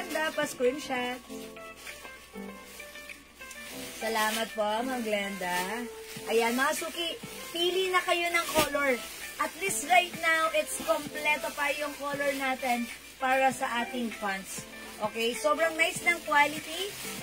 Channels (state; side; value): identical; both; correlation 1.00